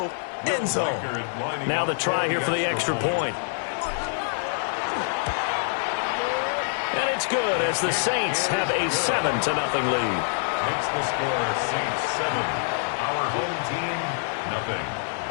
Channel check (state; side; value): silent; right; digital silence